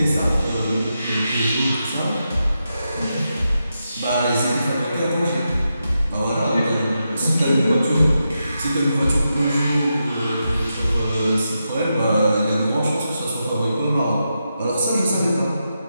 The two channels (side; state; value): both; inverted; correlation -0.87